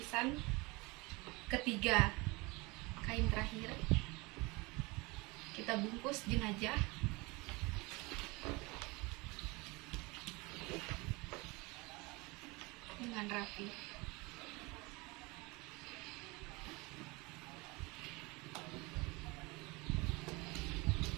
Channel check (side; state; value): left; quieter; 25.1 dB